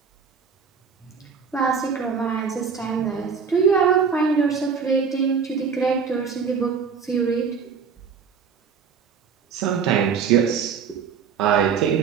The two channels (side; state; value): left; quieter; 6.3 dB